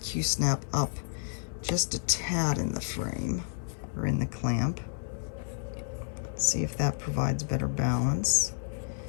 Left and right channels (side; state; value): right; silent; 57 dB below the other